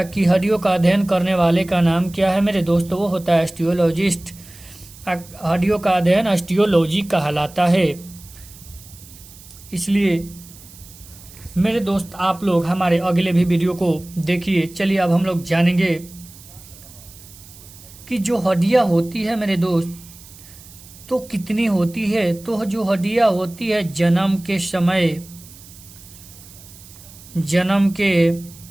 कि हड्डियों का अध्ययन करने वाले का नाम क्या है मेरे दोस्त, वो होता है ऑस्टियोलॉजिस्ट। हड्डियों का अध्ययन ऑस्टियोलॉजी कहलाता है। इसलिए मेरे दोस्त आप लोग हमारे अगले भी वीडियो को देखिए। चलिए अब हम लोग जानेंगे कि जो हड्डियां होती है मेरे दोस्त तो कितनी होती है। तो जो हड्डियां होती है जन्म के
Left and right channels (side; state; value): right; noise; hiss, 20 dB below the sound